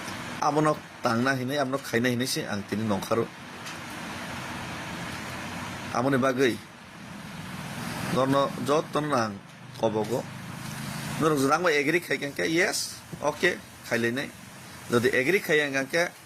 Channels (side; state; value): both; identical; correlation 1.00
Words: आबनो तांना हिनाय आबनो खाइना हिनायसे आं तिनि नंखारो आमनि बागै नरनो जतन आं कबगो नर जरांबा एग्री खाइकांके यस ओके खाइलायनाय जदि एग्री खाइयांगांके